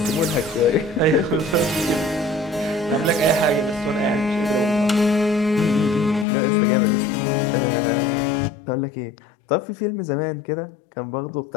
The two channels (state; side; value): drops out; right; at 6.2 s